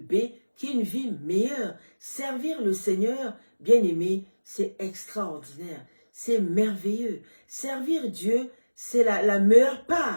qui est une vie meilleure. Servir le Seigneur, bien-aimé, c'est extraordinaire, c'est merveilleux. Servir Dieu, c'est la meilleure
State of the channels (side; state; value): both; inverted; correlation -1.00